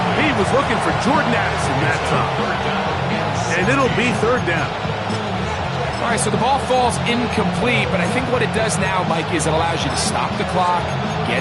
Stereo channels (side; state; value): both; identical; correlation 1.00